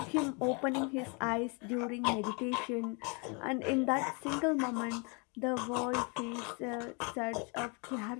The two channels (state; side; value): quieter; right; 33.3 dB